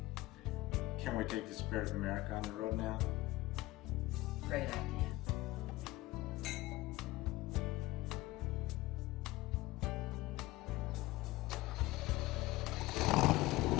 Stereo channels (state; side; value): quieter; right; 18.8 dB